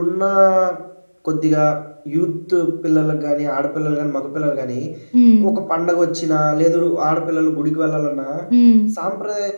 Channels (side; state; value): both; inverted; correlation -1.00